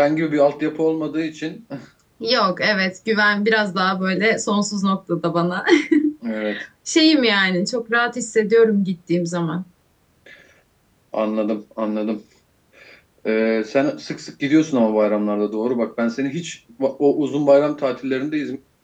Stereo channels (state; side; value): identical; both; correlation 1.00